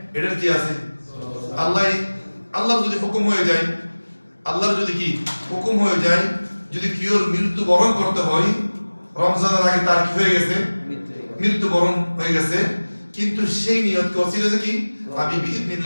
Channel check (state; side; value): inverted; both; correlation -1.00